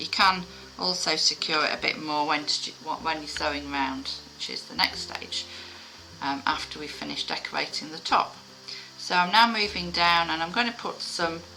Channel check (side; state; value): both; identical; correlation 1.00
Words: can also secure it a bit more when you're sewing round, which is the next stage after we've finished decorating the top. So I'm now moving down, and I'm going to put some,